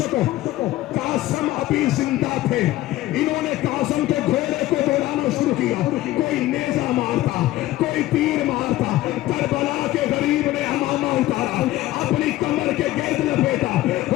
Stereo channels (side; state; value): right; quieter; 16.0 dB